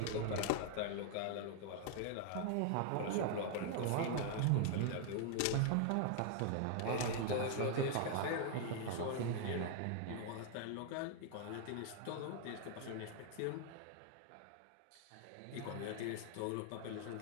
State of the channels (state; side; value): different; both; correlation 0.00